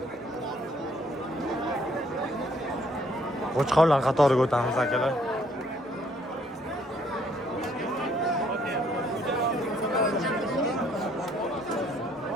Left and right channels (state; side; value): normal; both; correlation 0.65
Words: Qo'chqorlar qatoriga o'tamiz akalar.